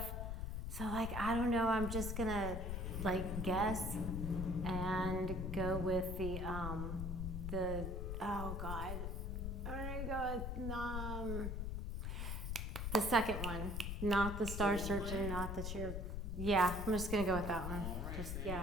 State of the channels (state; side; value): noise; left; rumble, 3 dB below the sound